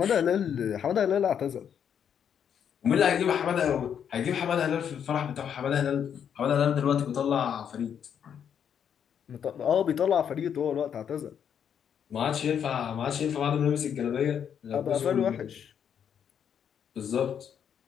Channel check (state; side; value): quieter; right; 8.3 dB